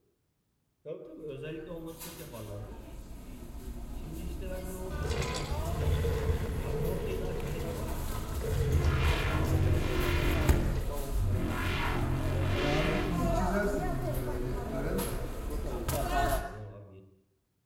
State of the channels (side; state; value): both; identical; correlation 1.00